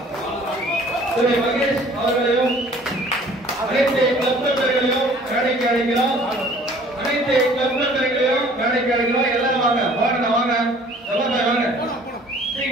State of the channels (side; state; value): both; normal; correlation 0.53